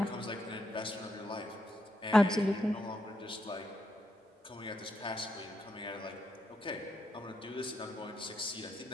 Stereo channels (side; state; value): both; normal; correlation 0.80